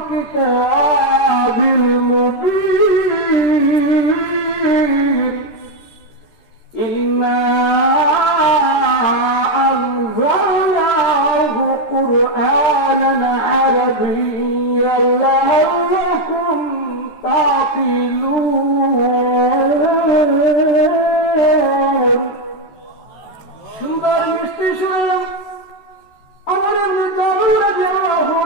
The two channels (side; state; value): right; late; 13 ms